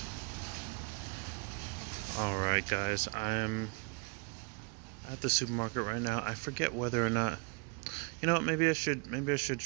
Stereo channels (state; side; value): quieter; left; 32.8 dB